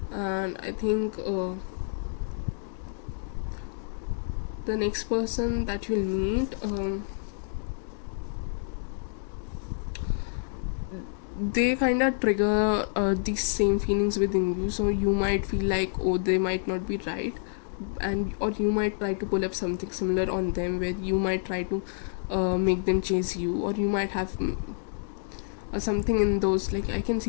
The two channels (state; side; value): silent; right; digital silence